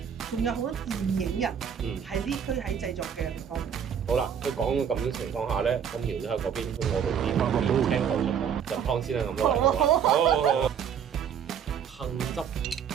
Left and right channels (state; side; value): quieter; left; 7.9 dB